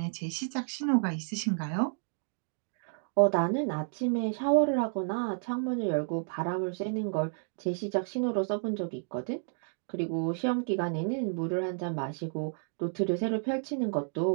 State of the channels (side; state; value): left; silent; digital silence